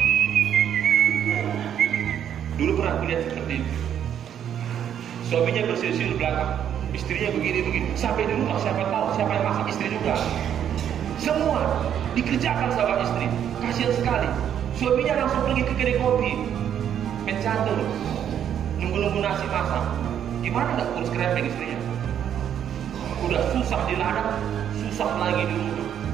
Dulu pernah kulihat seperti itu. Suaminya bersiul-siul di belakang, istrinya begini. Sampai di rumah siapa tahu siapa yang masak, istri juga. Semua dikerjakan sama istri. Kasihan sekali. Suaminya langsung pergi ke kedai kopi, mencatur, nunggu nasi masak. Gimana nggak urus kerepeng istrinya? Udah susah di ladang, susah lagi di rumah,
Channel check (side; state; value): left; quieter; 9.4 dB